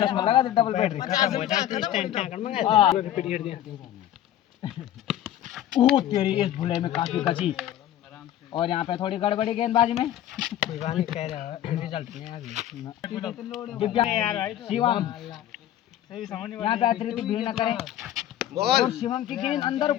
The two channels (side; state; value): right; quieter; 12.1 dB